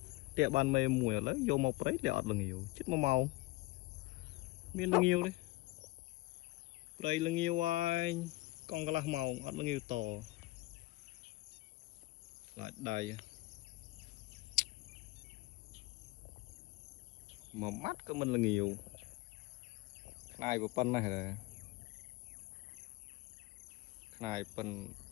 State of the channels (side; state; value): right; quieter; 20.3 dB